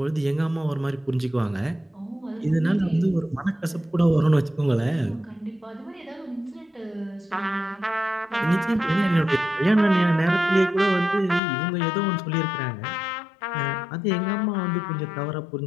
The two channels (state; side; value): drops out; right; at 11.4 s